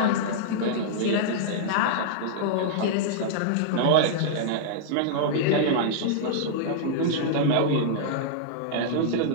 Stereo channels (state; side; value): different; both; correlation -0.02